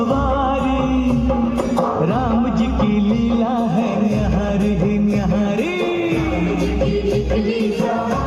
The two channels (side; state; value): both; identical; correlation 1.00